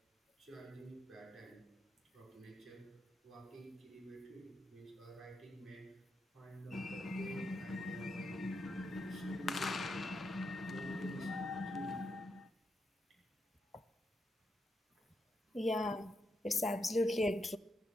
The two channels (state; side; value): normal; both; correlation 0.83